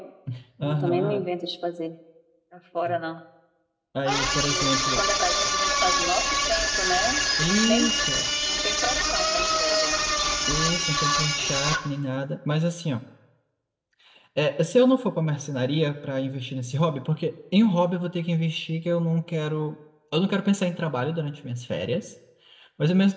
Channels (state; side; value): identical; both; correlation 1.00